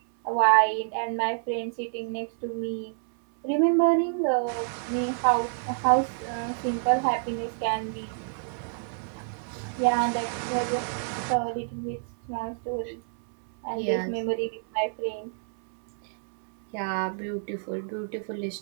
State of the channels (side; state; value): left; silent; 59 dB below the other